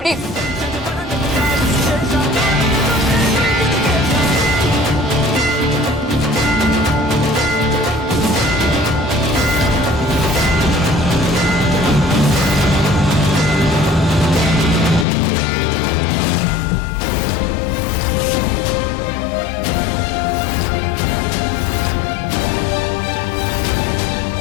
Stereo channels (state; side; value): drops out; right; at 15.1 s